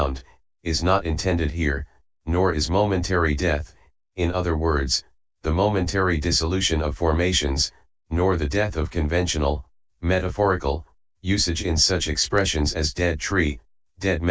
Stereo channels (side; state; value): both; identical; correlation 1.00